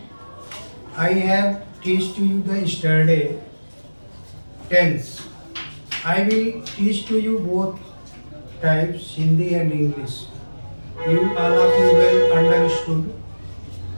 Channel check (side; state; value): both; inverted; correlation -1.00